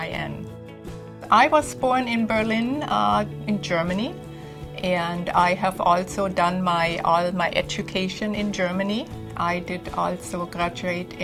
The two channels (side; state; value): both; identical; correlation 1.00